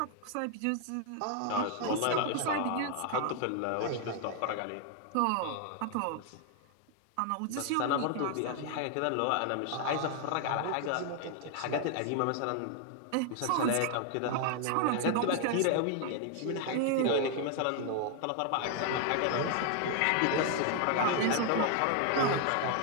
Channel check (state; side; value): different; both; correlation 0.00